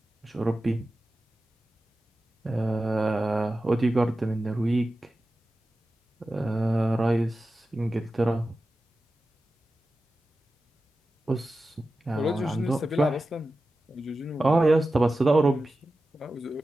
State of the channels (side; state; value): both; normal; correlation 0.93